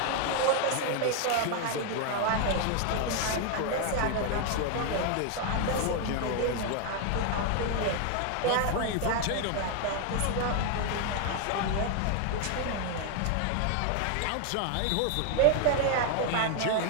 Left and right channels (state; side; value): different; both; correlation 0.00